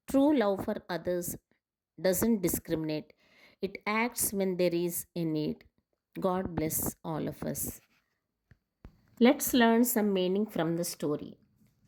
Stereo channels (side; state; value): both; identical; correlation 1.00